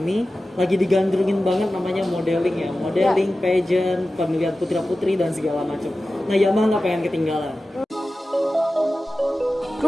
lagi digandrungin banget namanya modeling ya, modeling, pageant, pemilihan putra-putri dan segala macam. Nah, Yamaha nggak pengen ketinggalan.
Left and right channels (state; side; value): normal; both; correlation 0.95